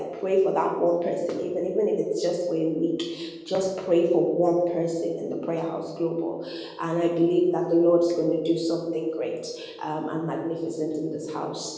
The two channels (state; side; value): identical; both; correlation 1.00